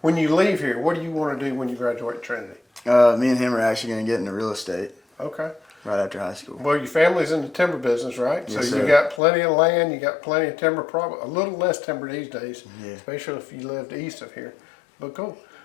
When you leave here, what do you want to do when you graduate Trinity? Me and him are actually going to get into real estate Okay. right after high school. Well, your family's in the timber business, right? Yes, so you sir. got plenty of land, you got plenty of timber, probably a little less timber these days, Yeah. especially if you lived east of here. But cool.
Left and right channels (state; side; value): drops out; right; at 9.2 s